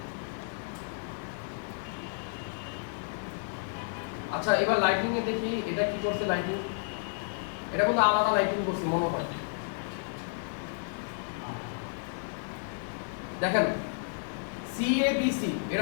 আচ্ছা, এবার লাইটিং এ দেখি এটা কি করছে। লাইটিং, এটা কিন্তু আলাদা লাইটিং করছে মনে হয়। দেখেন সিএবিসি, এটা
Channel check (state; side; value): silent; right; digital silence